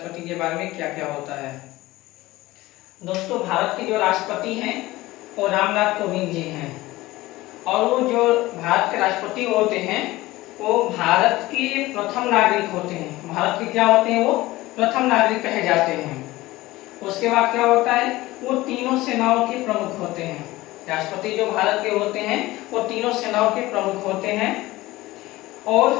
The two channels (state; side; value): quieter; right; 18.5 dB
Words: के बारे में क्या क्या होता है। दोस्तों, भारत के जो राष्ट्रपति हैं वो रामनाथ कोविंद जी हैं और वो जो भारत के राष्ट्रपति होते हैं वो भारत के प्रथम नागरिक होते हैं। भारत के क्या होते हैं? वो प्रथम नागरिक कहे जाते हैं। उसके बाद क्या होता है? वो तीनों सेनाओं के प्रमुख होते हैं। राष्ट्रपति जो भारत के होते हैं वो तीनों सेनाओं के प्रमुख होते हैं